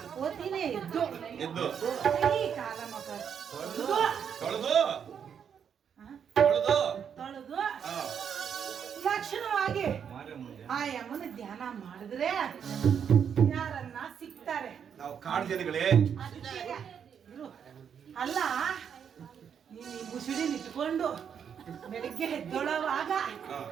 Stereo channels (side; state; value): left; quieter; 7.7 dB